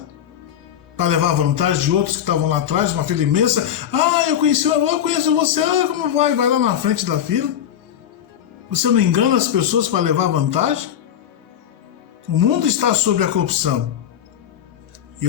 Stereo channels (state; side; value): quieter; right; 9.9 dB